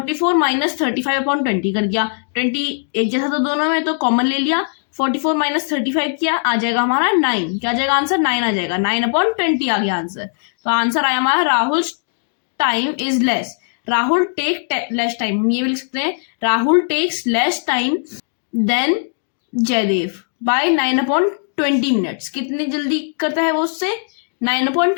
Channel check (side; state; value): right; silent; digital silence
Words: माइनस 35/20 कर दिया, 20 एक जैसा तो दोनों में, तो कॉमन ले लिया, 44 माइनस 35 किया, आ जाएगा हमारा 9, क्या आ जाएगा आंसर 9 आ जाएगा, 9/20 आ गया आंसर। तो आंसर आया हमारा Rahul time is less, Rahul take less time, हम ये भी लिख सकते हैं Rahul takes less time than Jaidev by 9/20 minutes, कितनी जल्दी करता है वो उससे,